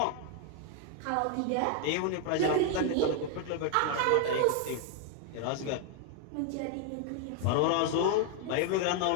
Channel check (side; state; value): both; different; correlation 0.00